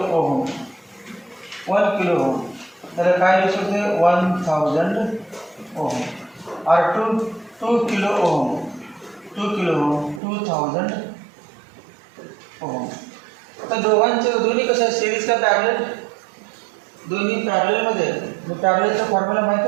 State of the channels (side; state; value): left; drops out; at 10.2 s